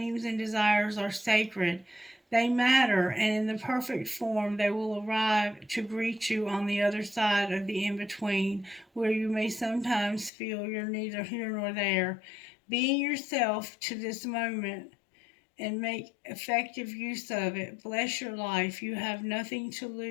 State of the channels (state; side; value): drops out; right; at 10.3 s